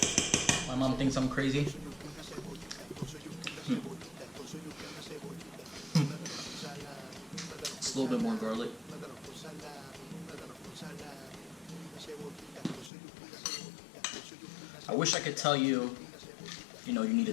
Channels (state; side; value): drops out; right; at 12.9 s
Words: My mom thinks I'm crazy. It's a little bit more garlic. I wish I could tell you, you need